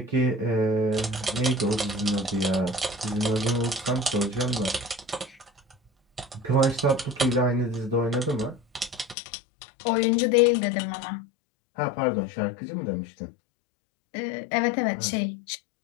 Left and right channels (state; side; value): drops out; right; at 9.2 s